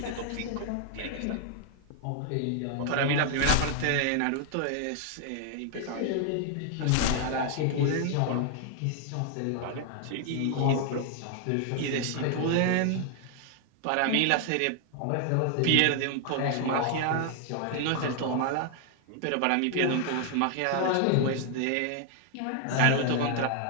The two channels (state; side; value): different; both; correlation 0.00